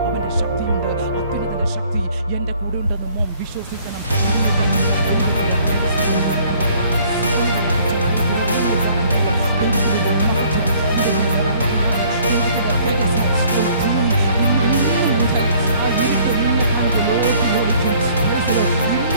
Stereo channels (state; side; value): inverted; both; correlation -0.58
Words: അവൻ്റെ ശക്തിയുണ്ട്, അത്യുന്നതൻ്റെ ശക്തി എൻ്റെ കൂടെ ഉണ്ടെന്ന് മോൻ വിശ്വസിക്കണം.